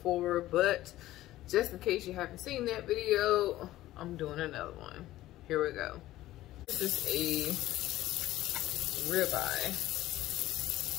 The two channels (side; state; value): right; quieter; 15.4 dB